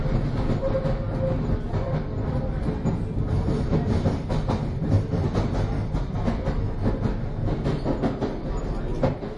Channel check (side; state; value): both; identical; correlation 1.00